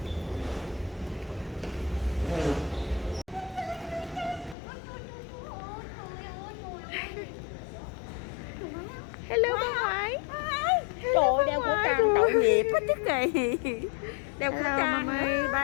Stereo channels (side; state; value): right; drops out; at 4.5 s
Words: Hello, bà ngoại. Trời ơi, đeo khẩu trang tội nghiệp hết chứ kì. Đeo khẩu Hello, trang. Mami.